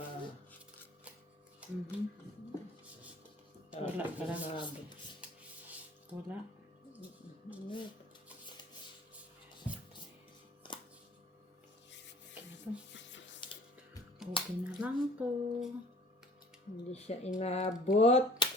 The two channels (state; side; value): normal; both; correlation 0.51